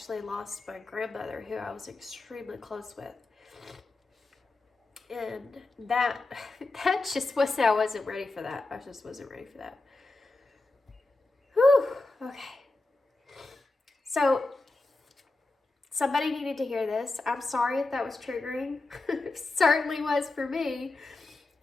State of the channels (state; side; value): quieter; right; 3.2 dB